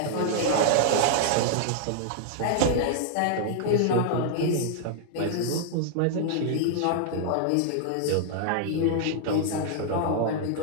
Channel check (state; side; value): different; both; correlation -0.01